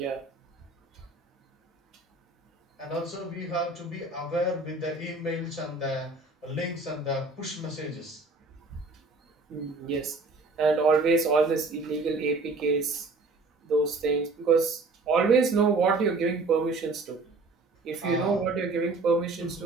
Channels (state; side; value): quieter; left; 3.5 dB